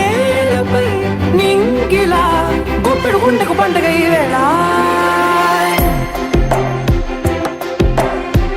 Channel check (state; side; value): identical; both; correlation 1.00